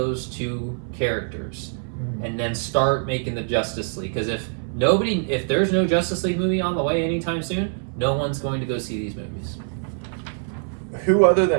two characters and then start making the Justice League. Because if there's no Justice League movie on the way anytime soon, no one's going to go see these movies. Who other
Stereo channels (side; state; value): left; silent; 59 dB below the other